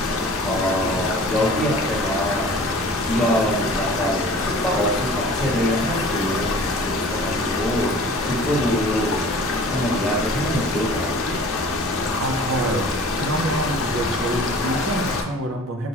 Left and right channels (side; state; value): both; normal; correlation 0.44